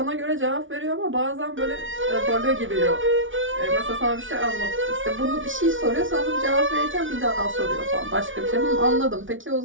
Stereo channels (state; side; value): late; left; 0.57 ms